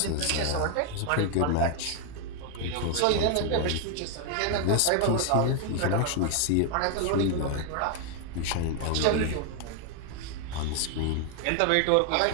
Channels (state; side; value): different; both; correlation 0.00